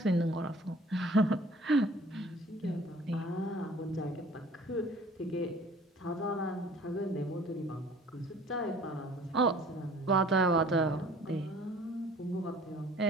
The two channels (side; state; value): both; normal; correlation 0.50